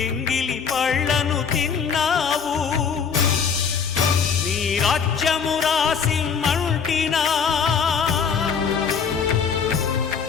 ఎంగిలి పళ్ళను తిన్నావు నీ రాజ్యము రాసి మంటినా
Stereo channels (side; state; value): right; quieter; 6.4 dB